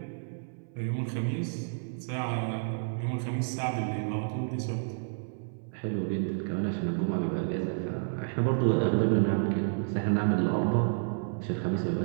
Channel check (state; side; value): silent; left; 58 dB below the other